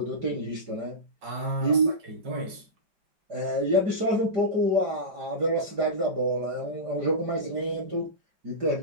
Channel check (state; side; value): late; left; 5.3 ms